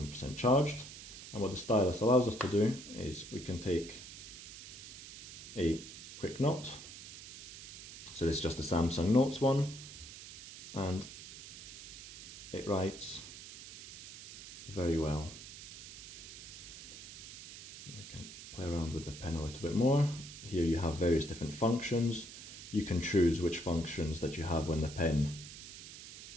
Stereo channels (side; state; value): right; noise; hiss, 13 dB below the sound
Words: charged. And what the stylus allows us to do is we can take a quick note. So this is just a Samsung Notes one, and it writes very well. We can play around with the pen a little bit more. Here you have various different functions. You can choose which functions that you have when